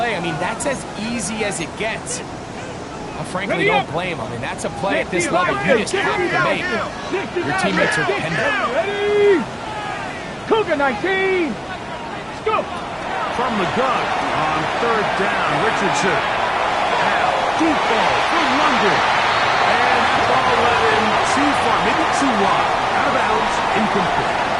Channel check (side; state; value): both; identical; correlation 1.00